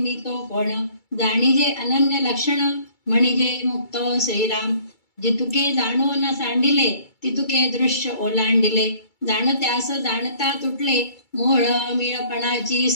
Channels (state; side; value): late; right; 2.3 ms